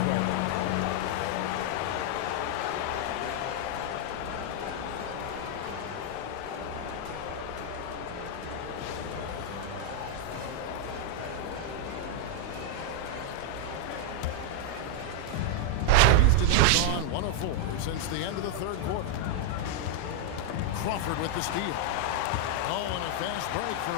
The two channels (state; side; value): different; both; correlation 0.00